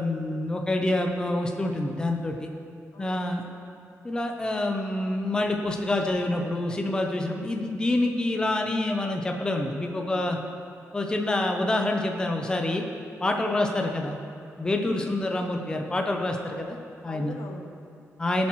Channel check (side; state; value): both; normal; correlation 0.86